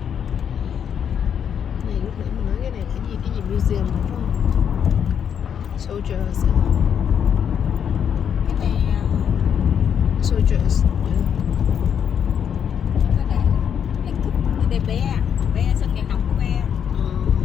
Này lúc nãy mình nói cái này là cái gì museum đúng không? Soldiers. Cái này Soldiers. cái này cái đây bé sân vận động của bé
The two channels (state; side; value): quieter; right; 8.1 dB